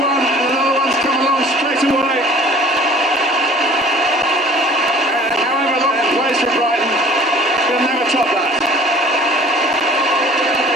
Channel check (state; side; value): normal; both; correlation 0.49